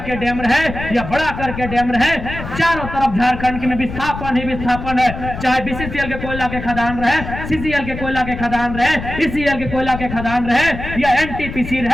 के डैम रहे, या बड़ा कर के डैम रहे, चारों तरफ झारखंड में विस्थापन ही विस्थापन है। चाहे बीसीसीएल के कोयला के खदान रहे, सीसीएल के कोयला के खदान रहे, ईसीएल के कोयला के खदान रहे, या एनटीपीसी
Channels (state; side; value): noise; left; rumble, 9 dB below the sound